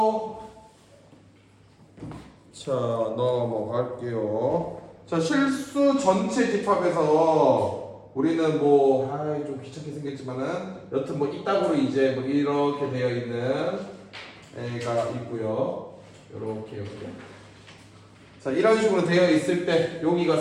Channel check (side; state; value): both; identical; correlation 1.00